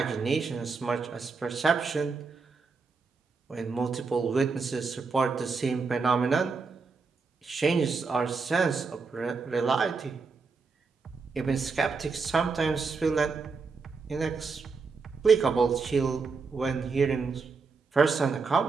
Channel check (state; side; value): quieter; left; 4.6 dB